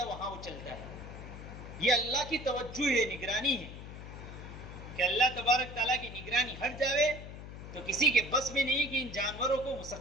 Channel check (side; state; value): left; noise; hum, 11 dB below the sound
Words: وہاں وہ چلتا ہے۔ یہ اللہ کی توجہ ہے، نگرانی ہے، کہ اللہ تبارک تعالیٰ کی نگرانی ہٹ جاوے تو کسی کے بس میں نہیں کہ ان جانوروں کو